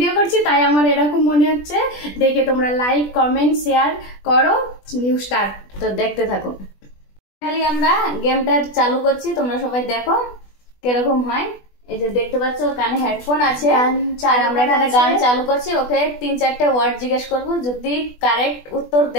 করছি তাই আমার এরকম মনে হচ্ছে। দেখে তোমরা লাইক কমেন্ট শেয়ার করো। নিউ স্টার্ট, তো দেখতে থাকো। খালি আমরা গেমটা চালু করছি, তোমরা সবাই দেখো কিরকম হয়। এই যে দেখতে পাচ্ছ কানে হেডফোন আছে, আর আমরা এখানে গান চালু করছি। ওকে 3-4টে ওয়ার্ড জিজ্ঞেস করব, যদি কারেক্ট উত্তর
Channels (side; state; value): right; late; 20 ms